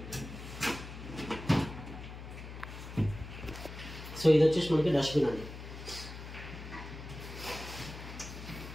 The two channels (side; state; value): left; noise; hum, 11 dB below the sound